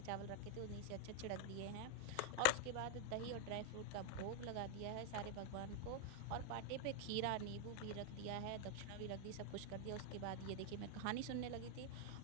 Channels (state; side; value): different; both; correlation 0.00